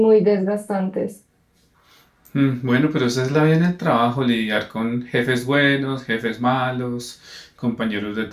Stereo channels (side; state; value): both; identical; correlation 1.00